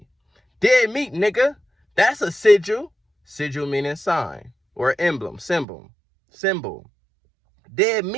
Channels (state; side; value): drops out; left; at 5.7 s